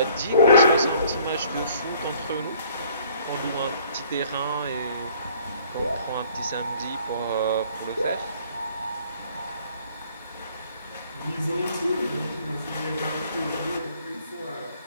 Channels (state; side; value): inverted; both; correlation -0.58